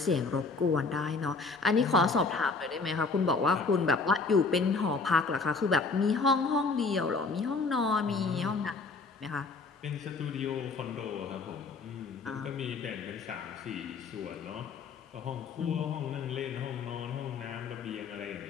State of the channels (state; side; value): quieter; right; 4.2 dB